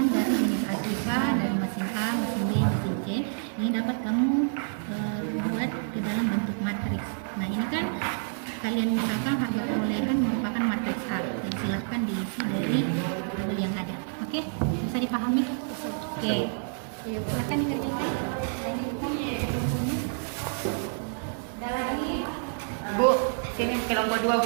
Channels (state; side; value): silent; left; digital silence